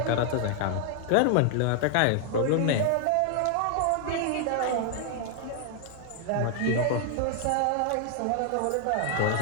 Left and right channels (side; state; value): both; different; correlation 0.00